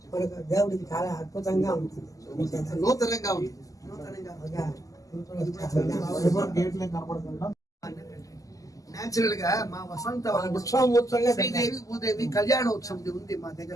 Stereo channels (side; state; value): right; late; 0.17 ms